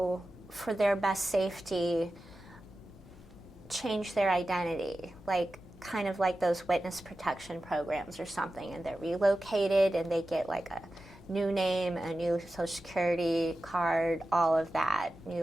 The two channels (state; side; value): normal; both; correlation 0.93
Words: for their best safety, change their identity, like kind of like those witness protection programs or something, and they're relocated and they get like a new name, a new social security card, all of that,